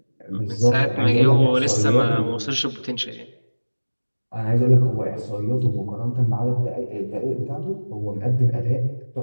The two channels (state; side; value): inverted; both; correlation -1.00